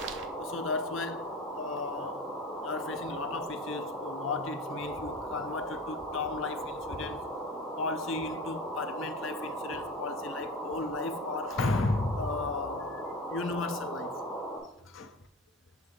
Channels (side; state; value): both; normal; correlation 0.31